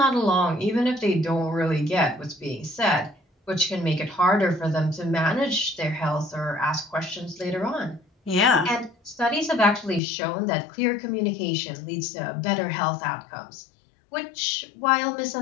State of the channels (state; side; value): drops out; right; at 10.0 s